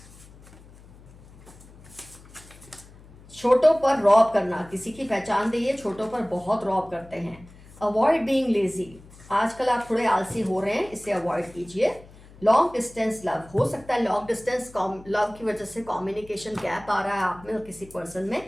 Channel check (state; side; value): noise; left; hum, 22 dB below the sound